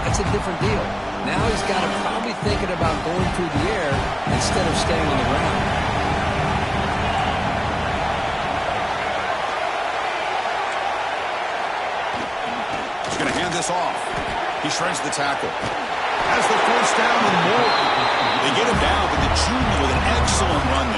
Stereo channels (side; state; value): both; identical; correlation 1.00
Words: that's a different deal. Now he's got to probably thinking about going through the air instead of staying on the ground. He's going to hand this off. He shreds the tackle. Has the first down and more. They get him down, but the junior with an excellent run